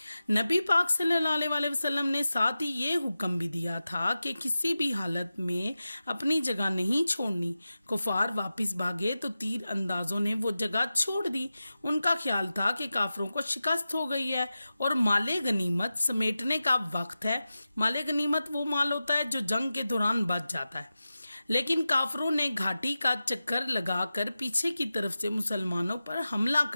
نبی پاک صلی اللہ علیہ وسلم نے ساتھ ہی یہ حکم بھی دیا تھا کہ کسی بھی حالت میں اپنی جگہ نہیں چھوڑنی۔ کفار واپس بھاگے تو تیر اندازوں نے وہ جگہ چھوڑ دی۔ ان کا خیال تھا کہ کافروں کو شکست ہو گئی ہے اور مال غنیمت سمیٹنے کا وقت ہے۔ مال غنیمت وہ مال ہوتا ہے جو جنگ کے دوران بچ جاتا ہے، لیکن کافروں نے گھاٹی کا چکر لگا کر پیچھے کی طرف سے مسلمانوں پر حملہ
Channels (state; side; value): inverted; both; correlation -0.94